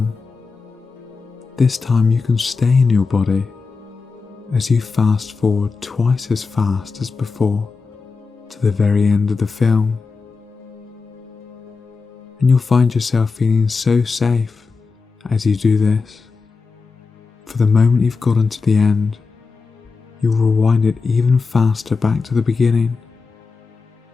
this time you can stay in your body as you fast forward twice as fast as before to the very end of the film. And you'll find yourself feeling so safe as you do this. For the moment you've gotten to the end, you'll rewind it even faster back to the beginning.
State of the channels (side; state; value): right; quieter; 4.6 dB